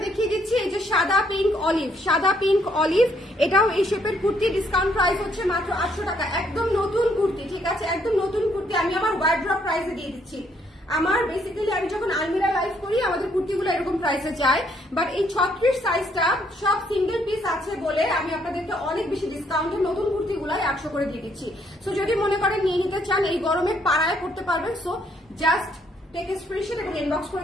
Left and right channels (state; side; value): normal; both; correlation 0.69